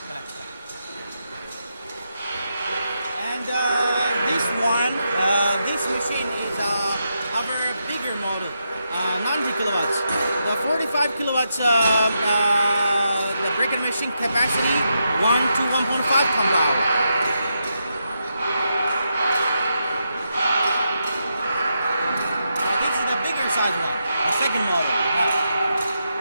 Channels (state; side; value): inverted; both; correlation -0.84